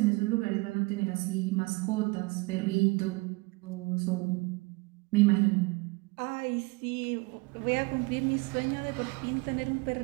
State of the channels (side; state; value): left; quieter; 25.4 dB